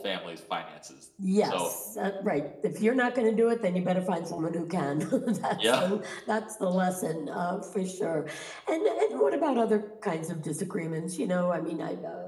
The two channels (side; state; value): both; identical; correlation 1.00